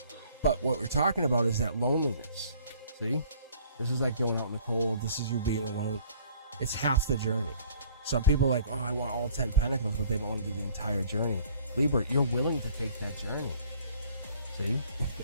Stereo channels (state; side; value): inverted; both; correlation -0.55